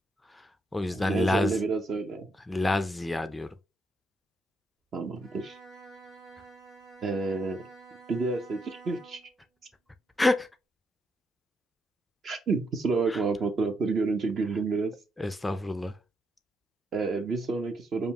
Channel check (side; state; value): both; normal; correlation 0.78